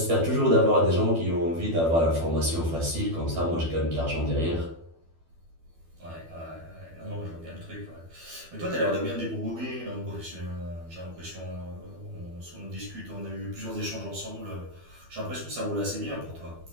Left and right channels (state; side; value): late; left; 12 ms